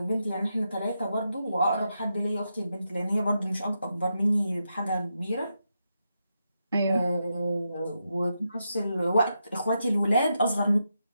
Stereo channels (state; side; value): inverted; both; correlation -0.85